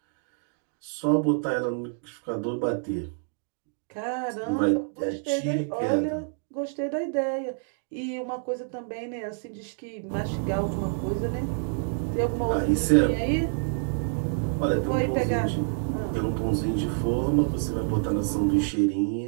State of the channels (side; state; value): left; silent; digital silence